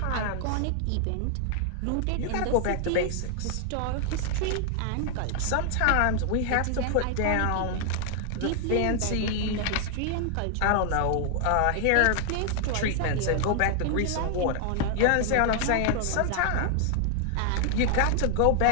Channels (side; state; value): both; different; correlation 0.00